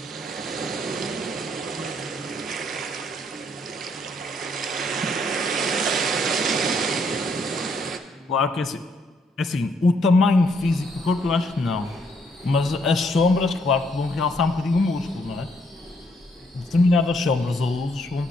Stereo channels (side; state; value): both; normal; correlation 0.71